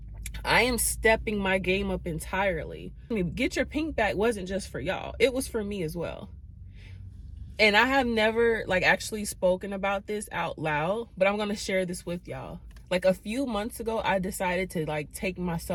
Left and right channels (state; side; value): identical; both; correlation 1.00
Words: I am stepping my game up entirely. I mean, get your pink back wasn't just for y'all. It was for me as well. And I have never actually spoken about this out loud, but I'm going to share this with y'all. Like a few months ago, I decided to take my